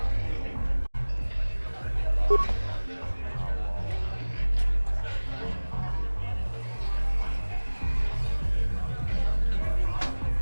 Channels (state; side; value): inverted; both; correlation -1.00